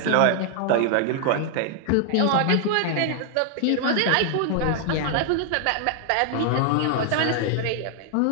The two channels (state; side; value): different; both; correlation 0.00